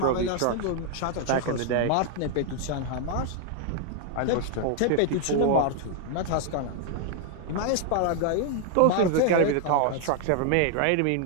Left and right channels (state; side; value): different; both; correlation 0.00